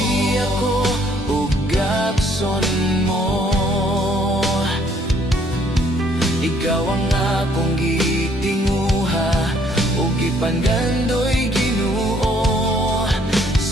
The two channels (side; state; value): both; normal; correlation 0.64